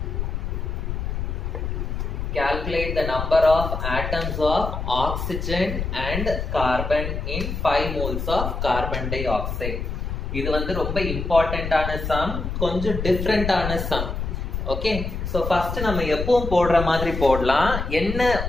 Calculate the number of atoms of oxygen and carbon in 5 moles of carbon dioxide. இது வந்து ரொம்ப இம்பார்ட்டன்டான some கொஞ்சம் டிஃபரெண்டான some okay so first நம்ம எப்பவும் போடுற மாதிரி போடலாம் என்ன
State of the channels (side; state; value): left; noise; rumble, 4 dB below the sound